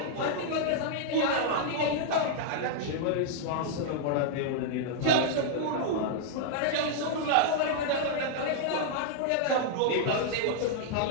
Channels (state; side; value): different; both; correlation -0.01